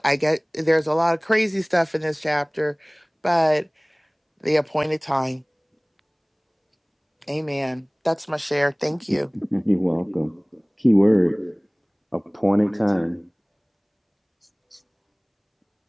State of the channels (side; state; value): both; identical; correlation 1.00